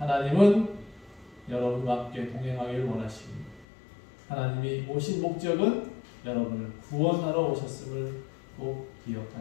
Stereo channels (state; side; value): drops out; right; at 3.7 s